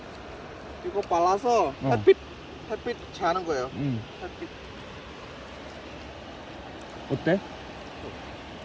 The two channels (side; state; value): both; identical; correlation 1.00